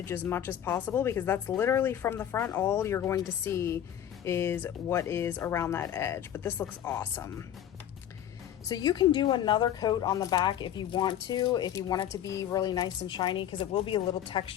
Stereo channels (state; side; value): quieter; right; 10.6 dB